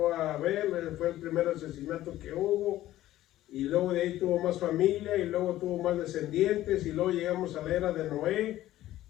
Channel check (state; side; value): quieter; right; 14.5 dB